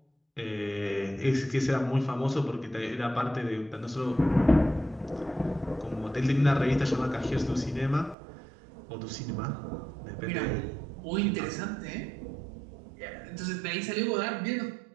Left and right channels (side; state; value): left; drops out; at 8.2 s